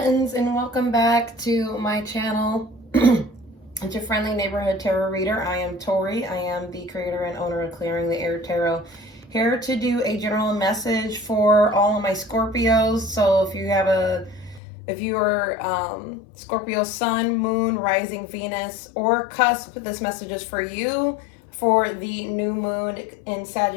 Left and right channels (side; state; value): right; drops out; at 14.6 s